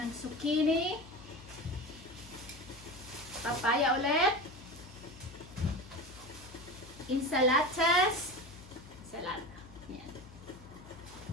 zucchini. Papaya ulit. Insalatas. Salata. Yan.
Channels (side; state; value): left; noise; hum, 19 dB below the sound